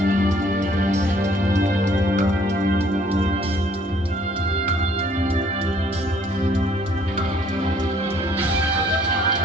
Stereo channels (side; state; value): both; normal; correlation 0.61